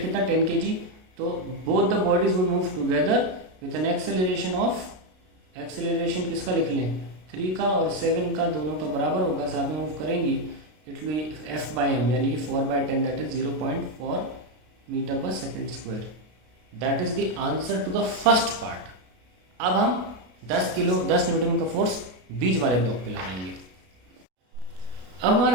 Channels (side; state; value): left; late; 32 ms